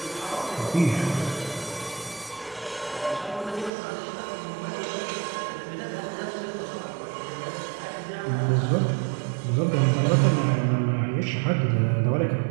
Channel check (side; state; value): left; drops out; at 3.7 s